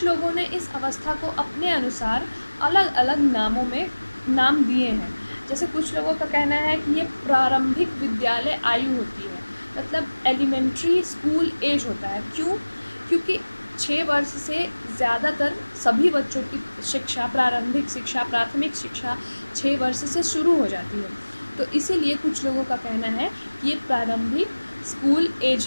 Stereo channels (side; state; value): both; inverted; correlation -1.00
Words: लोगों ने इस अवस्था को अपने अनुसार अलग-अलग नामों में नाम दिए हैं। जैसे कुछ लोगों का कहना है कि ये प्रारंभिक विद्यालय आयु होती है, मतलब एलिमेंट्री स्कूल एज होता है। क्यों? क्योंकि 6 वर्ष से ज़्यादातर सभी बच्चों की शिक्षा, प्रारंभिक शिक्षा, प्राथमिक शिक्षा 6 वर्ष से शुरू हो जाती है। तो इसीलिए कुछ लोगों का कहना है कि ये प्रारंभिक स्कूल एज